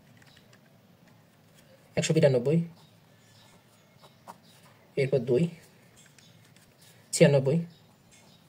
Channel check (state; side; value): identical; both; correlation 1.00